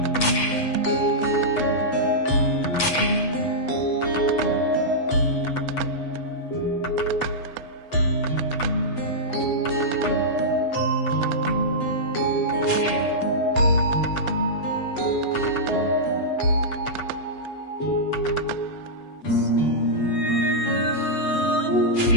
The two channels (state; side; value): late; right; 8.0 ms